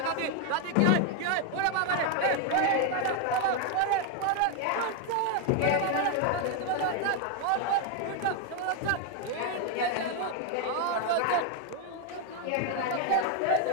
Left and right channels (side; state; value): both; different; correlation 0.01